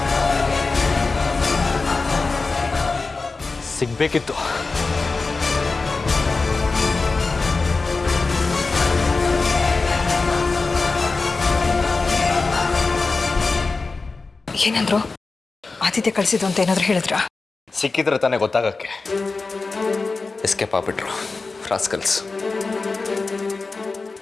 ಸಿಗ್ಬೇಕಿತ್ತು. ಏನಂದ್ರು? ಆದಿತ್ಯ ಕಳಿಸಿದ್ದು ಅಂತ ಏನಾದ್ರು ಹೇಳಿದ್ರ? ಸಿಕ್ಕಿದ್ರೆ ತಾನೇ ಗೊತ್ತಾಗಕ್ಕೆ. Escape ಆಗ್ಬಿಟ್ರು rascals.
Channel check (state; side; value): quieter; right; 3.9 dB